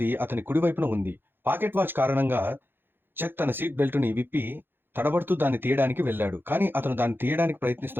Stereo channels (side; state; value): left; late; 0.10 ms